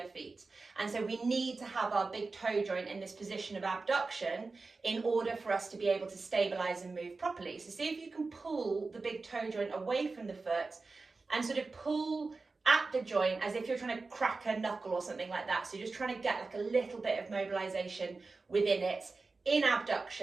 feet. And so we need to have our big toe joint in this position of abduction in order for us to be able to stabilize and move properly. So see if you can pull the big toe joint away from the foot and sort of pull at the joint as if you're trying to crack a knuckle or something like that. So you're just trying to get like a little bit of mobilization within it, in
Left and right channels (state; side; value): quieter; left; 3.9 dB